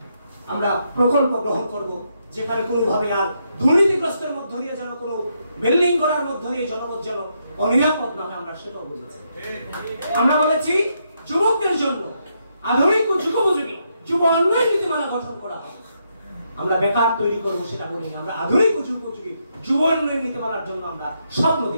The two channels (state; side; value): inverted; both; correlation -0.78